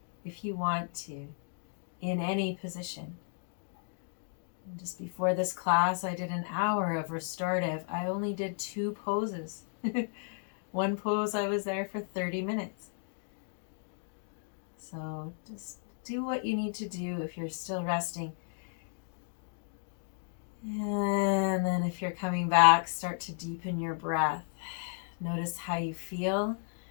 if you want to in any position. And just before this class, I did an hour of restorative. I only did 2 poses. One pose, I was there for 30 minutes. So just do what you need to do if you're still resting. And then if you're coming back, start to deepen your breath. Notice how you feel.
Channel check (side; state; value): right; silent; digital silence